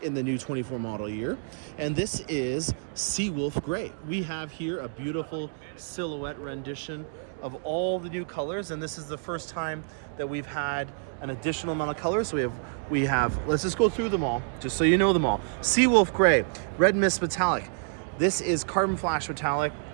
in the new 24 model year. And this is Seawolf Gray. We have here a beautiful silhouette rendition of all the new colors. And this is the first time that we've had an additional amount of colors. So we have, let's just go through them all, just so you know them all. Seawolf Gray, Red Mist Metallic. This is Carbon Flash Metallic.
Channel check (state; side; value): silent; left; digital silence